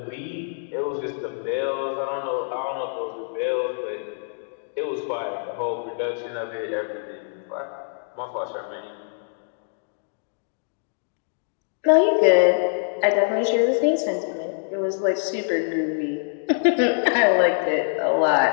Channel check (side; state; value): right; silent; digital silence